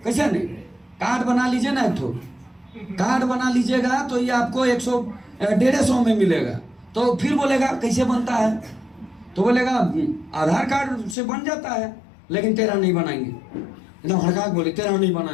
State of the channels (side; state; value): right; drops out; at 11.2 s